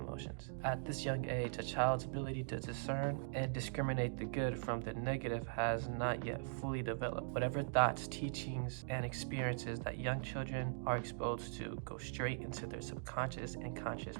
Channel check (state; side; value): silent; left; digital silence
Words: At this young age, a child's ability to discern and discriminate the good from the negative has not yet fully developed. Whatever thoughts, teachings, and experiences that young children are exposed to go straight into their subconscious and conscious